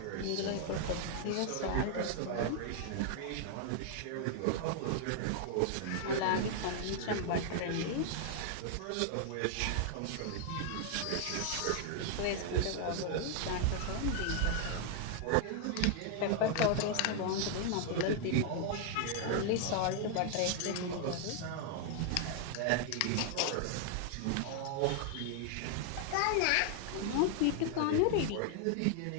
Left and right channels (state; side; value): different; both; correlation 0.00